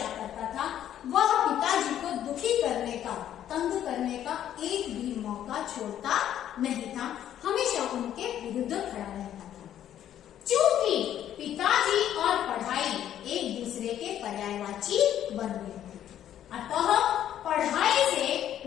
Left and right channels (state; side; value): quieter; right; 11.0 dB